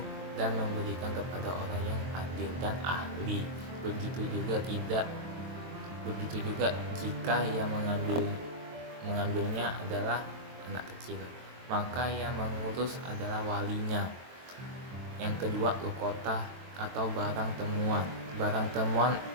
dan memberikan kepada orang yang adil dan ahli. Begitu juga jika yang mengambilnya adalah anak kecil, maka yang mengurus adalah walinya. Yang kedua, lukota atau barang temuan. Barang temuan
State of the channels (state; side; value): late; left; 23 ms